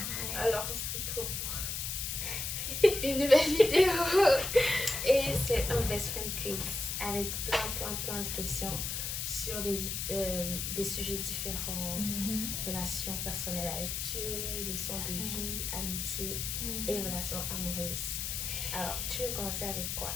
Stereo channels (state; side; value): noise; left; hiss, 2 dB below the sound